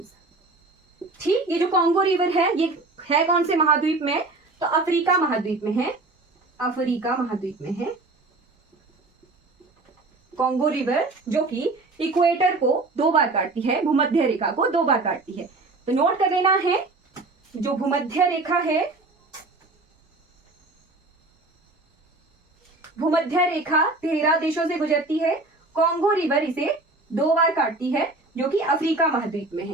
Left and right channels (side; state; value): left; quieter; 3.2 dB